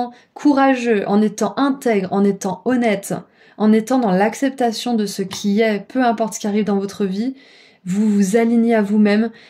courageux, en étant intègre, en étant honnête, en étant dans l'acceptation de ce qui est, peu importe ce qui arrive dans votre vie, vous vous alignez à vous-même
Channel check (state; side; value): identical; both; correlation 1.00